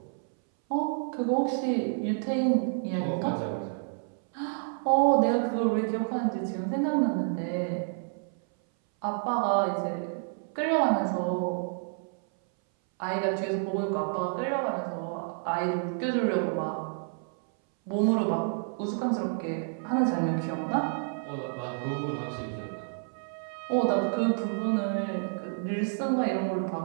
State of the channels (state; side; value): silent; left; 58 dB below the other